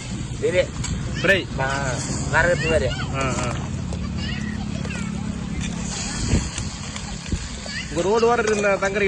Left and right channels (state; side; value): identical; both; correlation 1.00